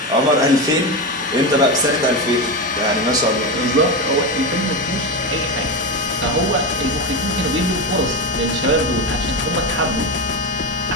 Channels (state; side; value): normal; both; correlation 0.17